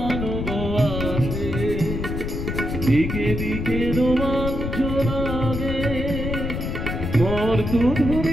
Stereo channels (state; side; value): noise; left; rumble, 3 dB below the sound